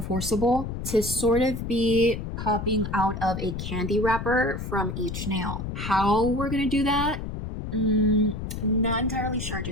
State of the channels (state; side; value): noise; left; rumble, 6 dB below the sound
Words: Forcible to sort of be popping out of a candy wrapper from each nail. How we're gonna do that? Not entirely sure